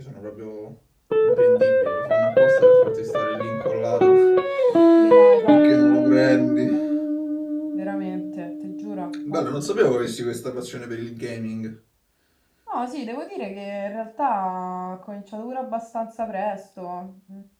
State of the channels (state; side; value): identical; both; correlation 1.00